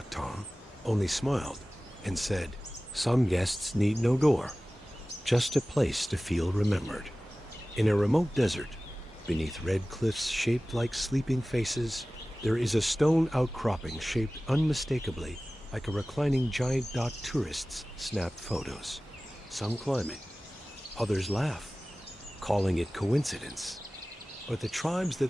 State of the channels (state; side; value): normal; both; correlation 0.97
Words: Tom only smiled and said, "Some guests need no door, just a place to feel remembered." In a remote desert, beneath red cliffs shaped like sleeping faces, there is a stone outcropping shaped unmistakably like a reclining giant. Tourists snap photos. Some climb it, others laugh, calling it coincidence. But the tribes